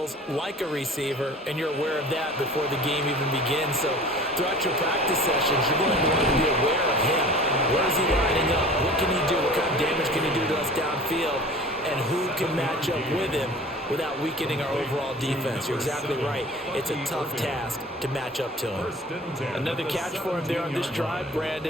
like a receiver, and you're aware of that before the game even begins. So throughout your practice sessions, you're going to want to be aware of him. Where is he lining up? What can he do? What kind of damage can he do to us downfield? And who can match up with him without weakening our overall defense? You're exactly right. It's a tough task to match up to him. Another catch for him there on this drive,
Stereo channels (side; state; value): both; normal; correlation 0.43